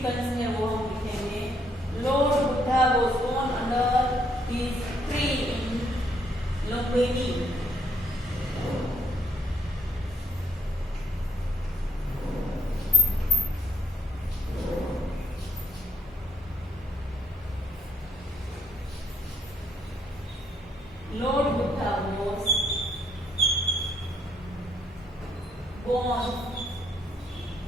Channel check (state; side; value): normal; both; correlation 0.70